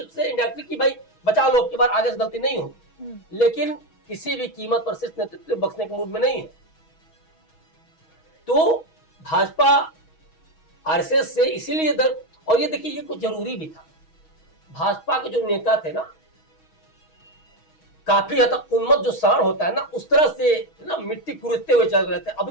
से इंडायरेक्टली कि भाई बचा लो, अब की बार आगे से गलती नहीं होगी, लेकिन किसी भी कीमत पर शीर्ष नेतृत्व बख्शने के मूड में नहीं है। तो भाजपा आरएसएस से इसीलिए दर, और ये देखिए ये कुछ जरूरी भी था। भाजपा के जो नेता थे ना, काफी हद तक उन्मत्त जो साण होता है ना, उस तरह से ना मिट्टी कुरेदते हुए चल रहे थे।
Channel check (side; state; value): right; late; 6.3 ms